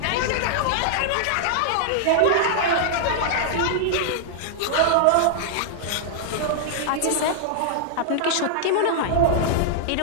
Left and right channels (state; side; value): different; both; correlation -0.01